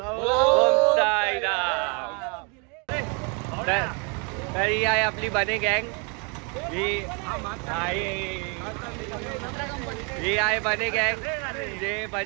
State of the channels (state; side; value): quieter; left; 34.2 dB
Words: साईराम। तर ही आहे आपली बने गँग, ही आहे बने गँग जे